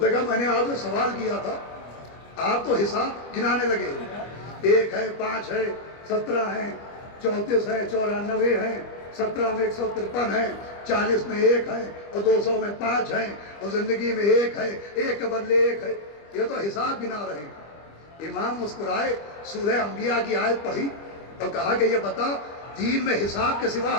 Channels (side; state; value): right; late; 25 ms